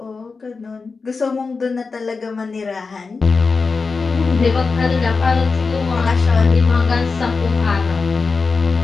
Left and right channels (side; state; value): right; quieter; 4.5 dB